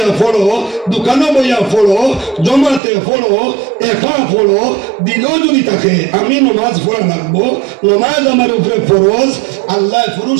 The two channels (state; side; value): drops out; left; at 2.8 s